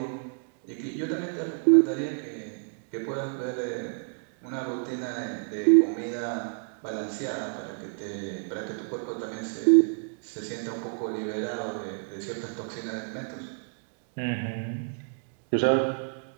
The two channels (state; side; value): silent; left; 58 dB below the other